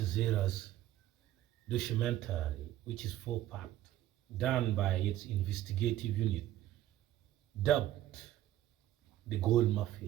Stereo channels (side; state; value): left; quieter; 13.6 dB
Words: documentary, which is 4-part, done by its investigative unit, dubbed the Gold